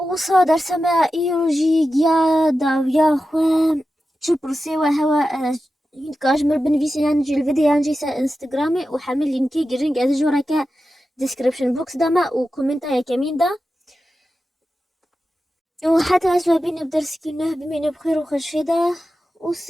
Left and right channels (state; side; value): normal; both; correlation 0.92